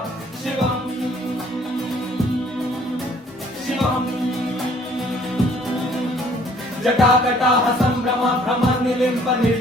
शिवम् शिवम् जटाकटाह सम्भ्रम भ्रम निलिम्ब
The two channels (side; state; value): both; normal; correlation 0.59